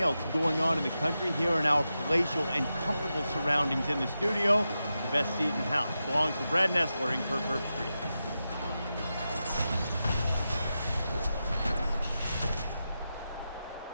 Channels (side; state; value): both; inverted; correlation -0.90